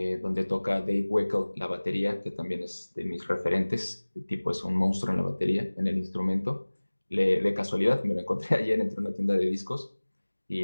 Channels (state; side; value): inverted; both; correlation -1.00